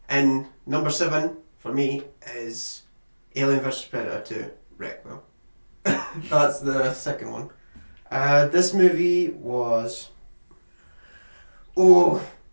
And number 7 for me is Alien vs Predator 2 Requiem. That's the second one. This movie was... Oh,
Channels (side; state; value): both; inverted; correlation -1.00